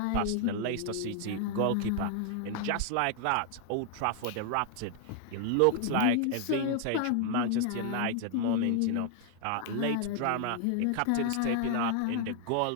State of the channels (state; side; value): different; both; correlation 0.00